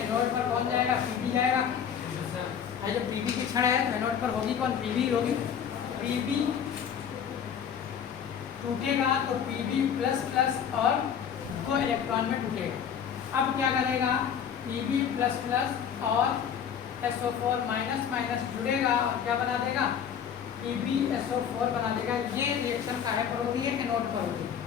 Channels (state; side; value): quieter; right; 8.1 dB